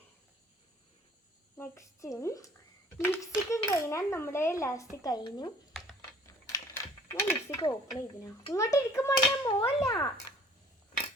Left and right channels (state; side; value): normal; both; correlation 0.54